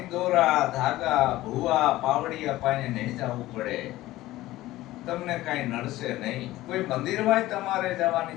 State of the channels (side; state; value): right; quieter; 16.6 dB